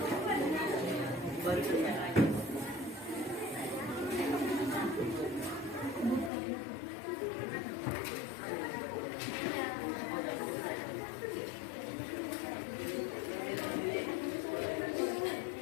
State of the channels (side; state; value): right; drops out; at 6.3 s